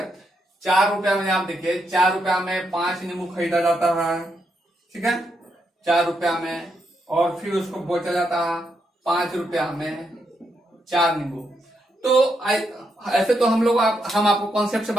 4 रुपया में आप देखिए 4 रुपया में 5 नींबू खरीदा जाता है, ठीक है, 4 रुपया में, और फिर उसको बेचा जाता है 5 रुपया में 4 नींबू। तो ऐसे तो हम आपको कॉन्सेप्ट से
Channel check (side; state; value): both; normal; correlation 0.80